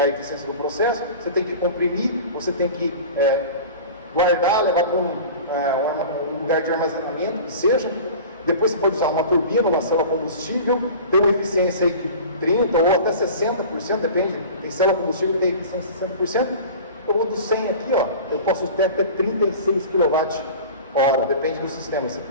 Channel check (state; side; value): inverted; both; correlation -0.37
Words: a eficiência do processo, você tem que comprimir, você tem que guardar, levar para um lugar de armazenamento, que seja. Depois você pode usar uma turbina, uma célula combustível, tem uma eficiência aí de 30% ou até 60%, depende, tem célula combustível que tem eficiência de 60%, ou do 100 aqui, ó, eu posso ter até 36 kWh, depende do sistema, se